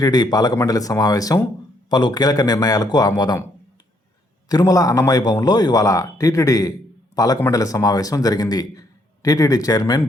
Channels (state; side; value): normal; both; correlation 0.71